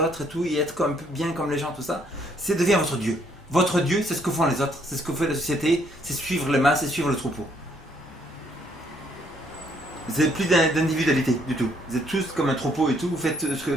et tout, et être comme, bien comme les gens, tout ça, c'est devient votre Dieu. Votre Dieu, c'est ce que font les autres, c'est ce que fait la société, c'est suivre les masses, c'est suivre le troupeau. Vous n'avez plus d'individualité du tout. Vous êtes tous comme un troupeau et tout, vous faites ce que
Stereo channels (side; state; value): both; normal; correlation 0.68